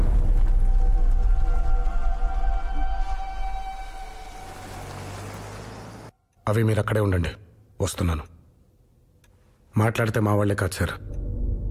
అవి మీరు అక్కడే ఉండండి, వస్తున్నాను. మాట్లాడితే మా వాళ్లే కాదు సార్,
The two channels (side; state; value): both; identical; correlation 1.00